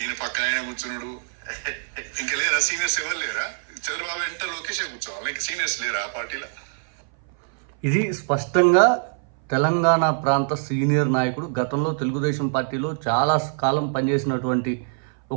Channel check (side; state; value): left; silent; 59 dB below the other